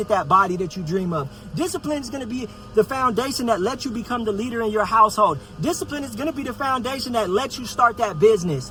that body that you dream of. Discipline is going to be the foundation that lets you become the leader in your household. Discipline is going to be the foundation that lets you start that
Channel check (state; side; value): identical; both; correlation 1.00